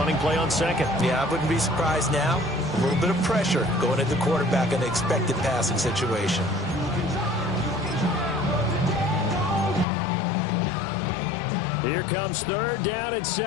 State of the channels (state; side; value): drops out; right; at 9.9 s